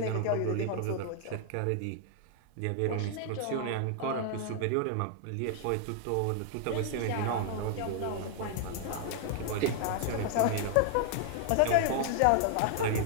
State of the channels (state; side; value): different; both; correlation 0.00